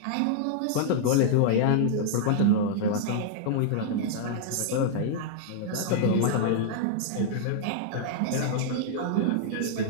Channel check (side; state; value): both; different; correlation -0.01